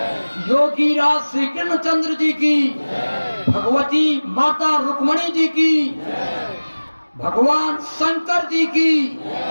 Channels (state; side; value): inverted; both; correlation -1.00